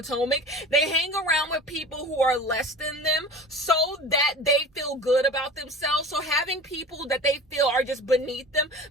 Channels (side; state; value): both; normal; correlation 0.37